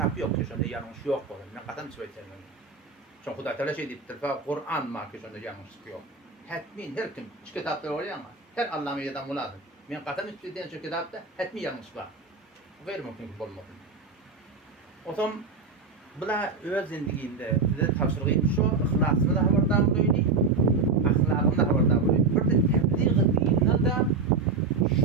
yok ki şunda yanlış yok olur. Ne kadar söyleyeceğim. Çünkü Hudaý Teala şey deyip Kur'an ma ki şunda yanlışlık yok. Hetmin her kim şu kitaplar oluyor ama her Allah'ın yadan muladır. Men katan üstüden şu kitapta hetmi yanlış var. Gayri mümkün ki olmadı. O zaman bula öz zindiginde bize tavsirgiyim şu ihlasını da haberdar bolýdy. Ahlakını da haberdar bolýdy. Bir de tebliğ etdiğinde de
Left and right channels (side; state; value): left; quieter; 4.4 dB